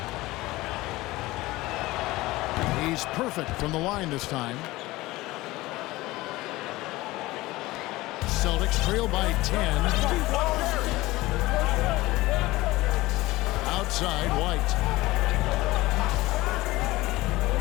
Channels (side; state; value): right; quieter; 19.2 dB